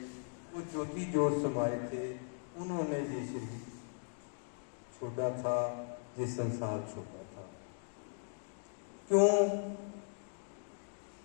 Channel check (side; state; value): right; silent; digital silence